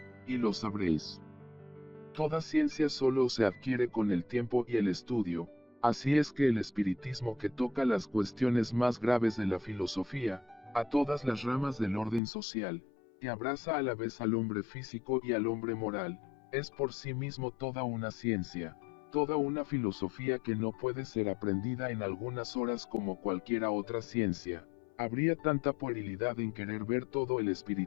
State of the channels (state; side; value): drops out; right; at 12.2 s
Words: y lo sabréis. Toda ciencia solo se adquiere con el tiempo y el estudio. Así es que el espiritismo, que toca las cuestiones más graves de la filosofía, a todas las ramas del orden social, que abraza a la vez al hombre físico y al hombre moral, es por sí mismo toda una ciencia, toda una filosofía que no puede ser aprendida en algunas horas como cualquiera otra ciencia. Habría tanta puerilidad en querer ver todo el